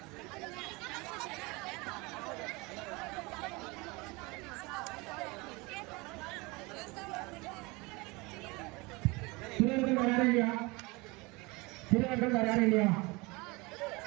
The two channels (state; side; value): quieter; left; 25.1 dB